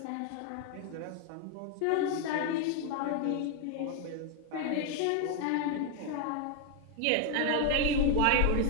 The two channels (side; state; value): both; different; correlation 0.01